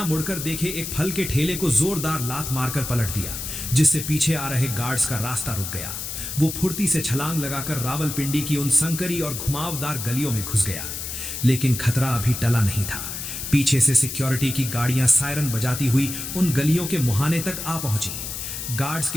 मुड़कर देखे एक फल के ठेले को जोरदार लात मारकर पलट दिया, जिससे पीछे आ रहे गार्ड्स का रास्ता रुक गया। वो फुर्ती से छलांग लगाकर रावलपिंडी की उन संकरी और घुमावदार गलियों में घुस गया। लेकिन खतरा अभी टला नहीं था। पीछे से सिक्योरिटी की गाड़ियां सायरन बजाती हुई उन गलियों के मुहाने तक आ पहुंची। गार्ड्स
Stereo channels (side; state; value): left; noise; hiss, 6 dB below the sound